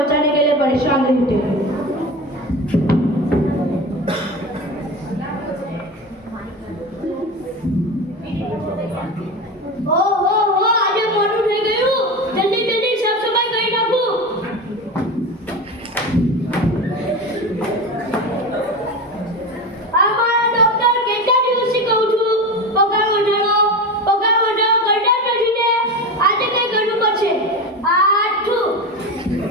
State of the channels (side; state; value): both; normal; correlation 0.24